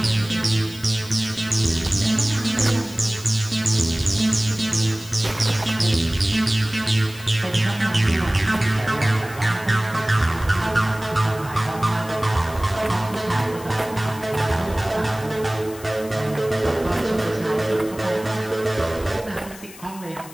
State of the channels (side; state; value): left; noise; hiss, 18 dB below the sound